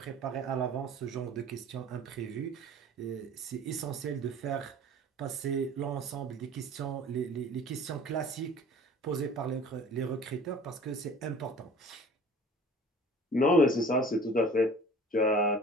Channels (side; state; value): both; normal; correlation 0.45